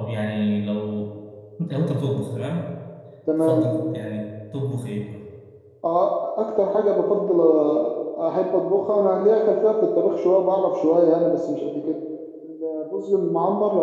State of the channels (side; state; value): both; identical; correlation 1.00